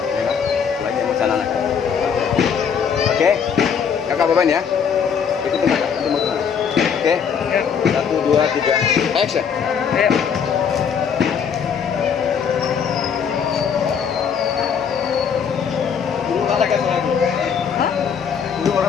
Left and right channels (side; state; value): right; quieter; 7.1 dB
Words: Kayla, lagi emosional anak. Oke, kakak beban ya. Ikutin kakak, nanti mau kemana? Oke. 1, 2, 3, action. Dulu olahraga lagi. Hah? Dulu